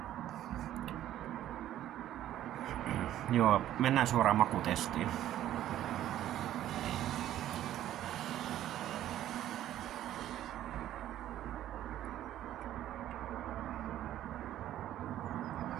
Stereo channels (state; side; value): quieter; left; 12.5 dB